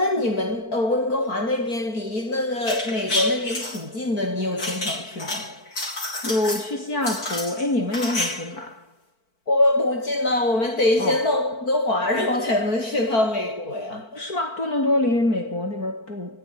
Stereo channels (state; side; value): late; right; 4.5 ms